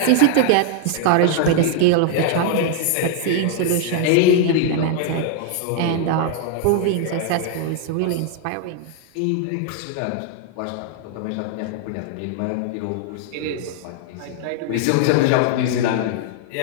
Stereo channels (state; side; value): different; both; correlation 0.00